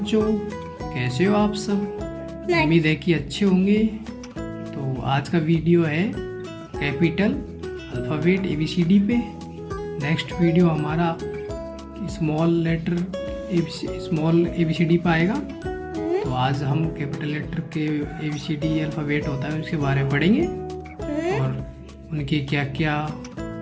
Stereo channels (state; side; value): identical; both; correlation 1.00